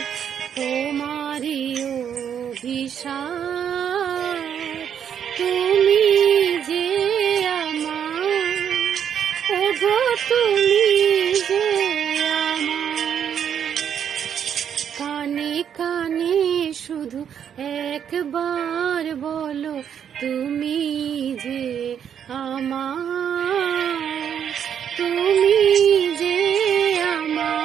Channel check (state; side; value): quieter; left; 8.6 dB